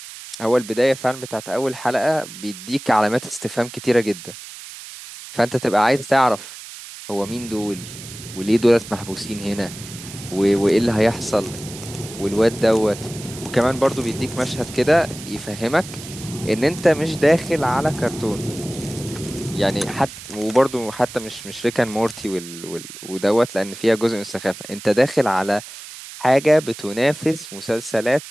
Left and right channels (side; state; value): right; noise; hiss, 14 dB below the sound